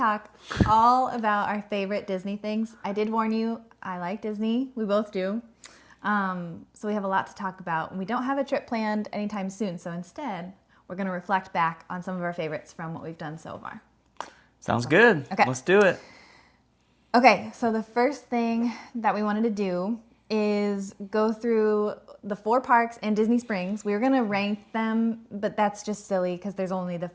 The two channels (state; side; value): identical; both; correlation 1.00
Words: all about our favorite Disney things. I did warn you, I like Disney. We both do. So we have a lot to talk about. We don't have a trip planned anytime soon, so instead, we're going to reflect back on some of our favorites from what we've done so far. Sounds good. Okay. Let's do it. Okay, so the first thing that we wanted to do is go through the 4 parks in Disney Springs. We were going to rank them, but that's just silly because there's only the